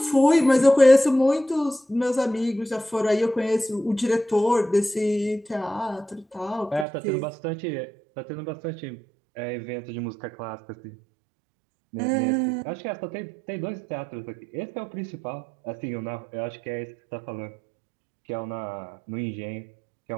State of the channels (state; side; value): drops out; left; at 6.9 s